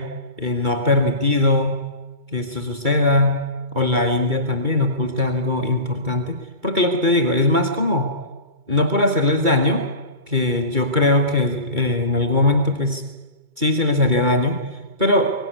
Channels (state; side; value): late; left; 2.2 ms